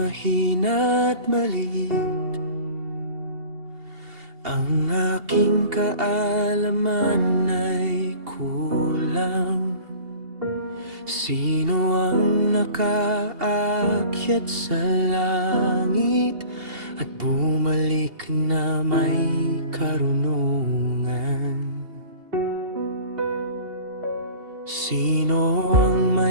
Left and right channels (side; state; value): left; late; 2.8 ms